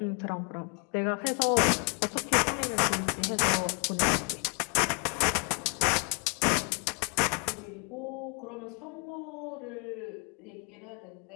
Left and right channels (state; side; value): quieter; right; 36.9 dB